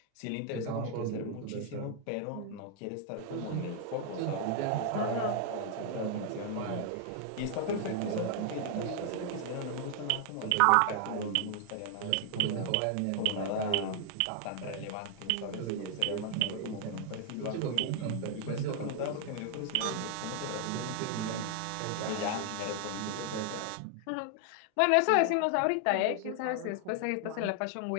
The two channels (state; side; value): different; both; correlation 0.00